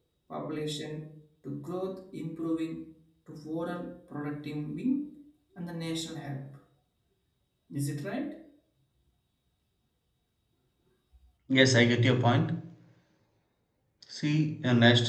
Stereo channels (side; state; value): both; identical; correlation 1.00